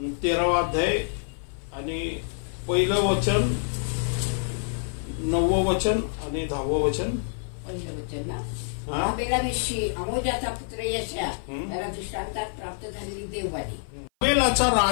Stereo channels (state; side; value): silent; right; 56 dB below the other